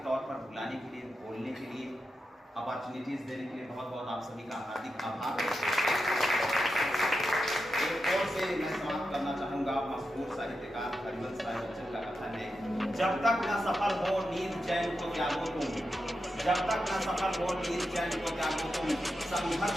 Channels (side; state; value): both; normal; correlation 0.88